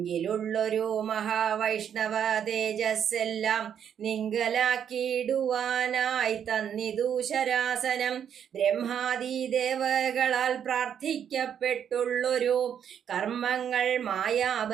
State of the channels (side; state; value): left; quieter; 8.6 dB